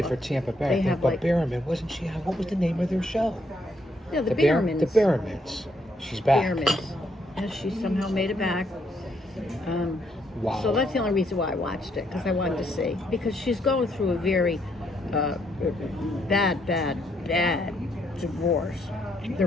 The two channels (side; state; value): both; normal; correlation 0.73